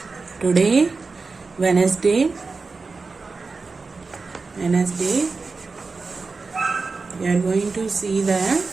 Today, Wednesday, we are going to see the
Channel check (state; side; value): quieter; left; 4.2 dB